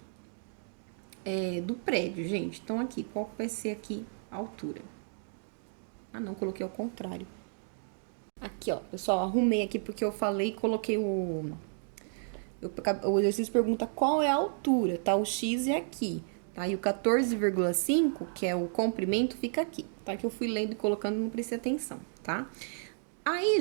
do prédio, gente? Então, aqui, qual vai ser aqui a altura? Ah, não, coloquei ao contrário. Aqui, ó, pessoal, arrumei aqui porque eu falei e coloquei o exercício pergunta qual é a altura, tá? O X é aqui, tá? E o 14,5, que é o comprimento, fica aqui, tá? Que eu fui lendo e colocando, não prestei atenção, tá?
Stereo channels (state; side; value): silent; left; digital silence